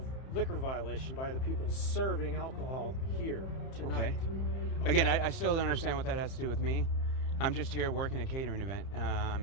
liquor violation by the people serving alcohol here tonight. Okay. Again, I still don't understand what that has to do with me. I'm just here working a catering event.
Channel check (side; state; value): right; late; 30 ms